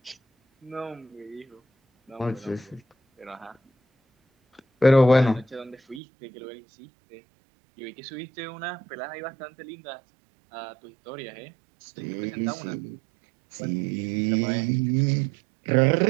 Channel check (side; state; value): left; drops out; at 6.0 s